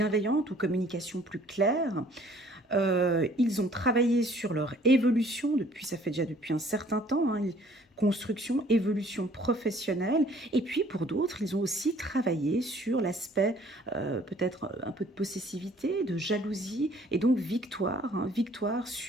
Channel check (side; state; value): both; normal; correlation 0.57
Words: ou communication plus claire. Ils ont travaillé sur leur évolution ça fait déjà depuis un certain temps, hein, construction, évolution professionnelle. Et puis pour d'autres, ils ont aussi travaillé sur l'aspect peut-être un peu de possessivité, de jalousie, et donc victoire, hein, victoire